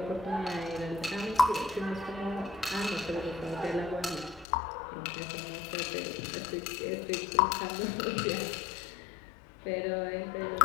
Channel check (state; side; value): drops out; right; at 4.5 s